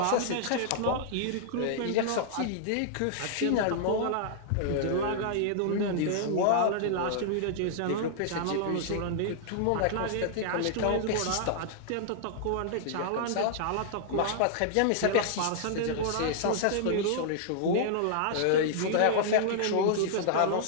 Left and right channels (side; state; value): both; different; correlation -0.01